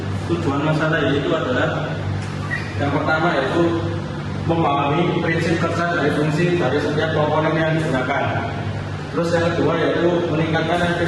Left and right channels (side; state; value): both; identical; correlation 1.00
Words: tujuan masalah yaitu adalah yang pertama yaitu memahami prinsip kerja dari fungsi dari setiap komponen yang digunakan. Terus yang kedua yaitu meningkatkan